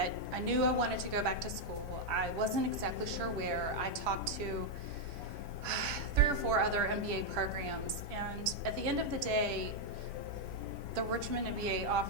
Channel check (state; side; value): normal; both; correlation -0.01